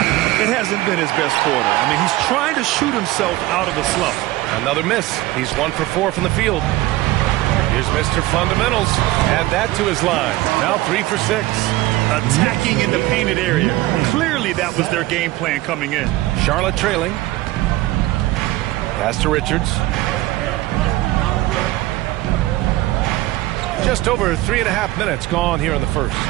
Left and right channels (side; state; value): left; quieter; 17.6 dB